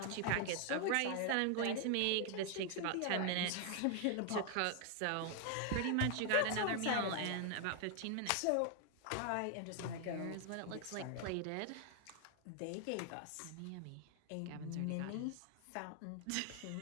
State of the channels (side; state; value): both; different; correlation 0.00